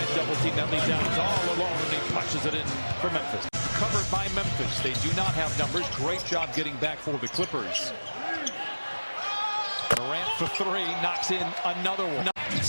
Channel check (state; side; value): inverted; both; correlation -1.00